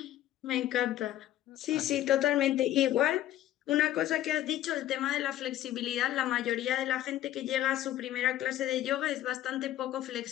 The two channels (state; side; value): quieter; right; 13.4 dB